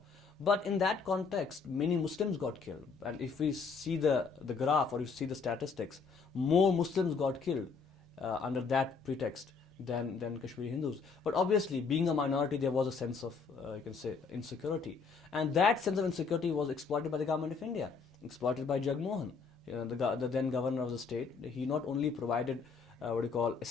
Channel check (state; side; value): quieter; right; 5.1 dB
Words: But in that context, many Muslims got killed. And if we see the graph, or you see the statistics, more Muslims got killed under that pretext than Kashmiri Hindus. But obviously, being a minority, there was a sense of, you can say, insecurity. And that sense of insecurity was exploited by the government of India, exploited by Jagmohan, the then governor of the state. He not only provided